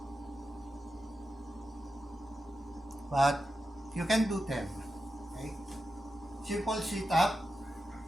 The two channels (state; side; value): normal; both; correlation 0.90